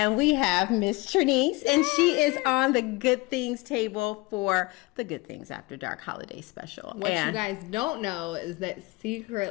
we have Miss Trinice, and she is on the Good Things table for the Good Things After Dark Holiday Special. What you guys don't know is that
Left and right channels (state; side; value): quieter; right; 23.4 dB